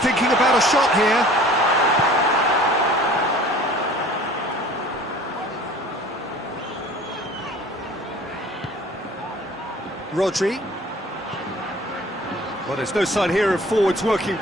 about a shot here. Rodri. Well, there's no sign here of forwards working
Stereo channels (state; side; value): normal; both; correlation 0.48